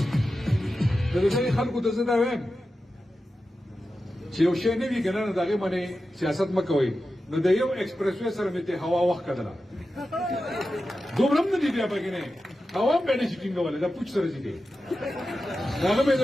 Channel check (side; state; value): both; normal; correlation 0.92